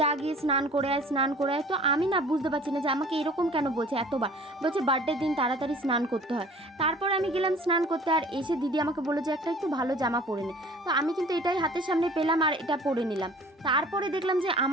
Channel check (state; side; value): normal; both; correlation 0.48